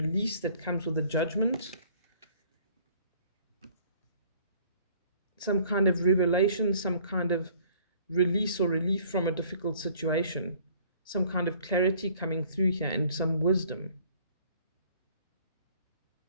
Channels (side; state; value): both; inverted; correlation -0.57